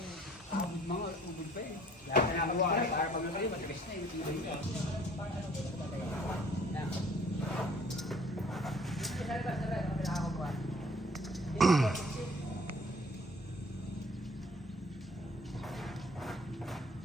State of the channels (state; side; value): normal; both; correlation 0.56